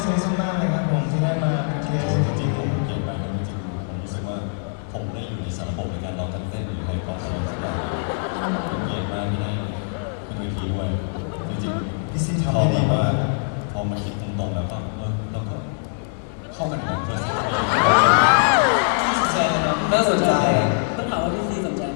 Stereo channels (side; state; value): right; silent; 61 dB below the other